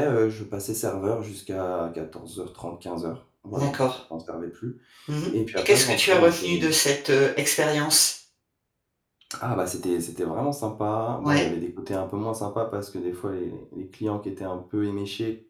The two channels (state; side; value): identical; both; correlation 1.00